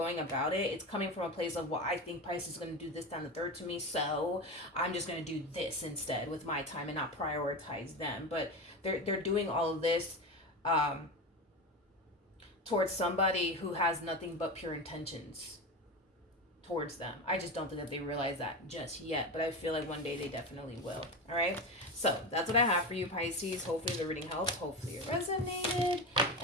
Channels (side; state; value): both; normal; correlation 0.21